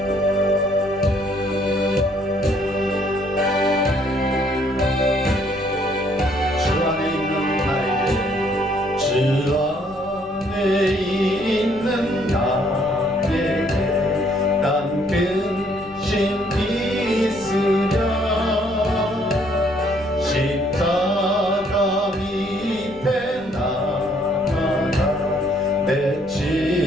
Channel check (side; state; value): left; noise; rumble, 23 dB below the sound